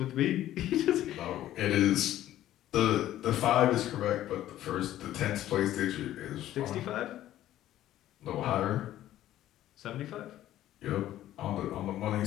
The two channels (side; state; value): right; quieter; 13.3 dB